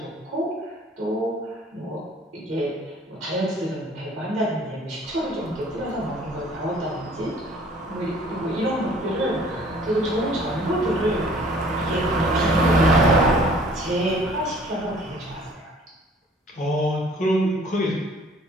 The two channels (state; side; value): normal; both; correlation 0.54